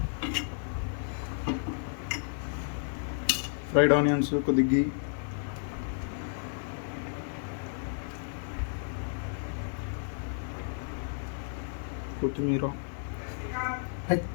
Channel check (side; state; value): right; silent; digital silence